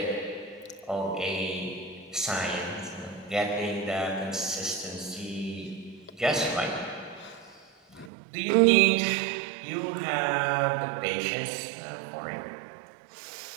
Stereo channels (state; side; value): drops out; left; at 8.1 s